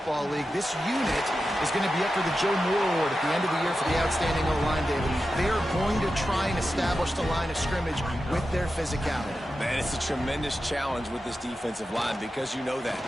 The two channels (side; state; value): both; normal; correlation 0.91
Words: League. This unit is going to be up for the Joe Moore Award at the end of the year for the outstanding O-line, David. They are going to try and establish the line of scrimmage with their physicality. Man, it's a tremendous challenge with this defensive line because you know that.